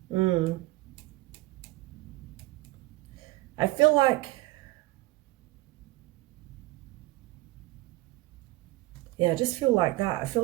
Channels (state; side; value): quieter; left; 19.3 dB